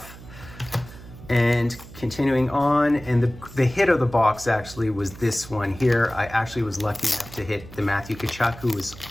And continuing on, and the hit of the box actually was this one here. I actually was lucky enough to hit the Matthew Tkachuk, who was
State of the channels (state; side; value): noise; right; hum, 17 dB below the sound